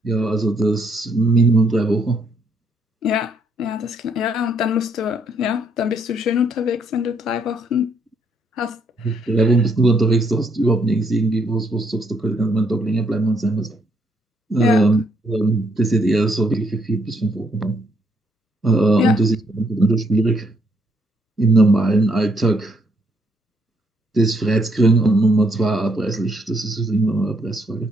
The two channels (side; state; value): both; normal; correlation 0.72